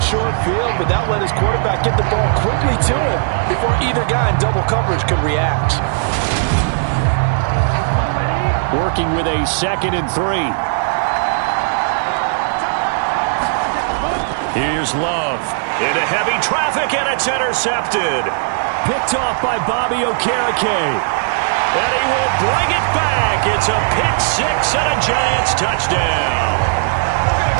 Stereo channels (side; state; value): left; silent; 68 dB below the other